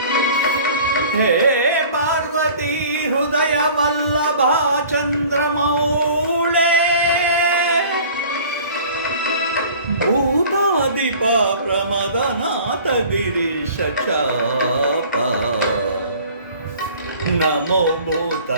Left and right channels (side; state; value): both; inverted; correlation -0.47